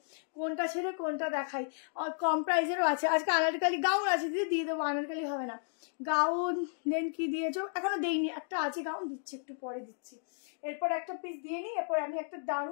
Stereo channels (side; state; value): right; silent; digital silence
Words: কোনটা ছেড়ে কোনটা দেখাই। কম প্রাইসেরও আছে আজকে। আনারকালি গাউন আছে দিদি, দিয়ে দেবো, আনারকালি হবে না। গাউন দেন কি দিয়েছো, এখনো দেইনি, একটা আছে গাউন, দিচ্ছি একটু পরে দিচ্ছি। এরপর একটা পিস দিয়ে নিই, এরপর আমি একটা